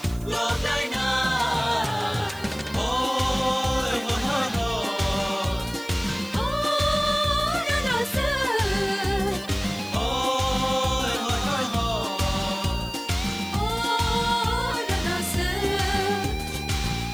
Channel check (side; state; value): right; noise; hiss, 20 dB below the sound